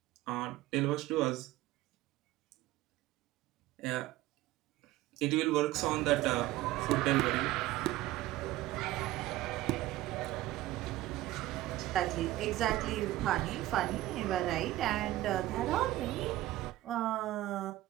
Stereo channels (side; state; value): left; quieter; 16.0 dB